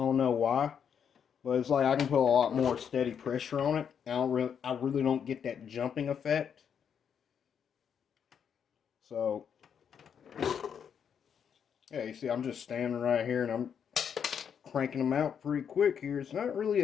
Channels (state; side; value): quieter; right; 7.7 dB